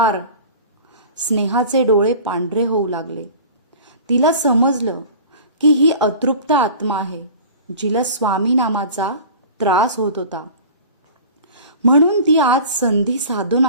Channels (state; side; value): inverted; both; correlation -0.41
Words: स्नेहाचे डोळे पांढरे होऊ लागले. तिला समजलं की ही अतृप्त आत्मा आहे, जिला स्वामी नामाचा त्रास होत होता. म्हणून ती आज संधी साधून